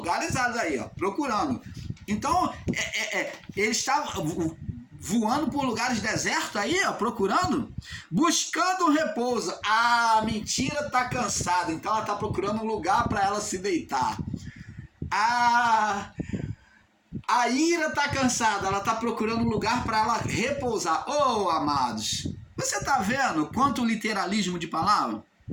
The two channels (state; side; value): identical; both; correlation 1.00